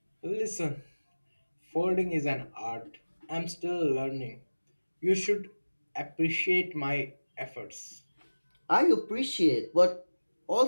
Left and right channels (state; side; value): inverted; both; correlation -1.00